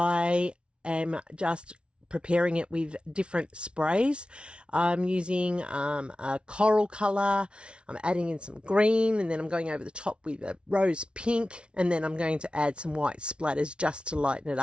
am just preparing it with different sprays. I'm using a coral color. I'm adding in some green, and then I'm going over the top with a rose pink, and then I'm going to add some white splatters just to lighten it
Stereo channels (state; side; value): late; left; 0.058 ms